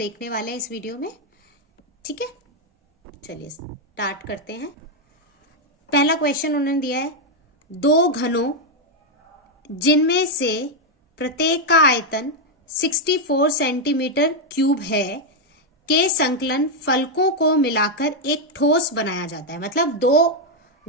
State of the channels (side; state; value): both; normal; correlation 0.01